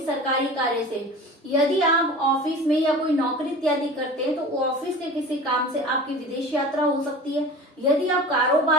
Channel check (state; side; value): normal; both; correlation 0.37